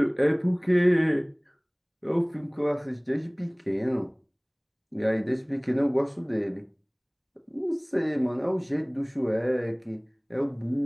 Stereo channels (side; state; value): both; identical; correlation 1.00